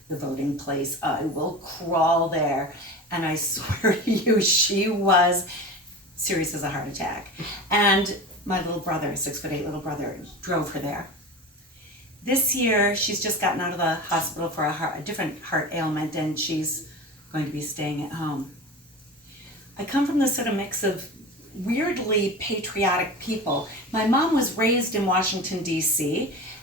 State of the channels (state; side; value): normal; both; correlation 0.31